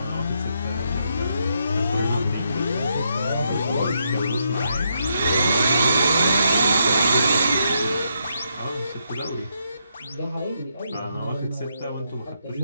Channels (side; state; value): both; inverted; correlation -0.79